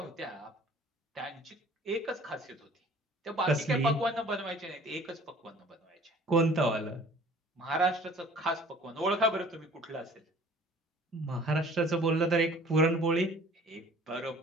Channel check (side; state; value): both; normal; correlation 0.50